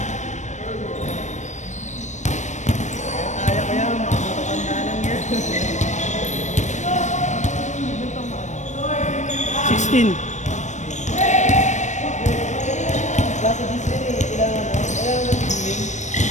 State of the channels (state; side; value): late; right; 0.34 ms